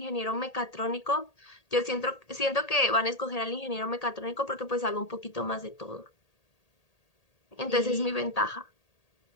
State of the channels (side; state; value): right; late; 1.8 ms